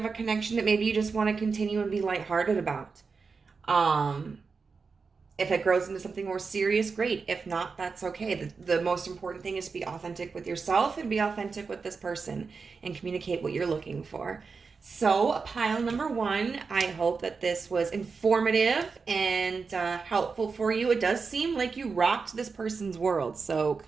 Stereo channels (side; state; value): left; quieter; 4.9 dB